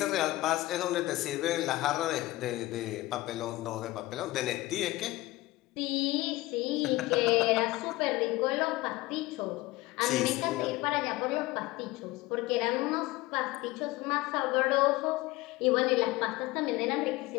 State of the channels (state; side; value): quieter; right; 18.9 dB